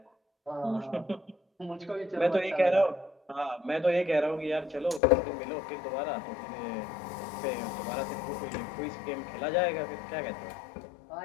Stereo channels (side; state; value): right; drops out; at 5.0 s